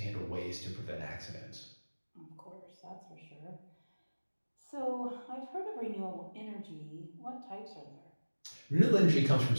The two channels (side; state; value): both; inverted; correlation -1.00